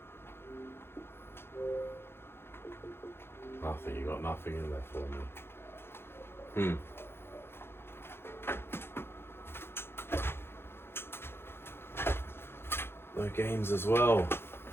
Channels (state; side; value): late; right; 0.11 ms